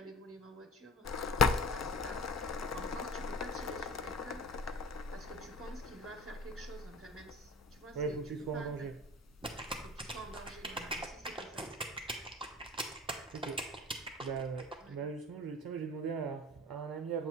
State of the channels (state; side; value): normal; both; correlation 0.38